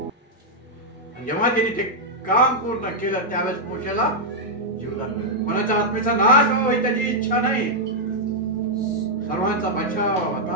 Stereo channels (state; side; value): normal; both; correlation -0.04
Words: जेव्हा त्यांनी ते काम पूर्ण केलं त्यावेळेस मोशेला जीवदान मिळालं. कोणाच्या आत्मेचा नाश व्हावा ही त्याची इच्छा नाही, सर्वांचा बचाव व्हावा,